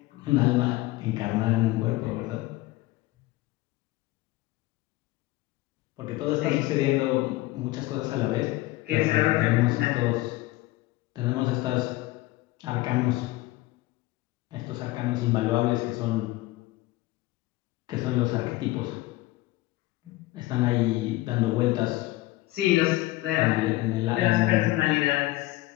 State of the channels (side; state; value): right; quieter; 18.6 dB